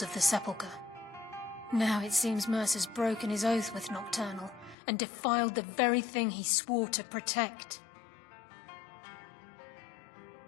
of the Sepulchre. Now it seems Mercer's broken his oath with Nocturnal and defiled the very thing he swore to protect.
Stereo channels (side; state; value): right; drops out; at 4.8 s